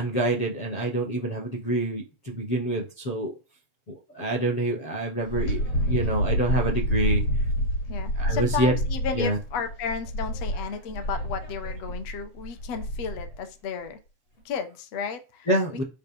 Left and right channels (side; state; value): right; late; 7.3 ms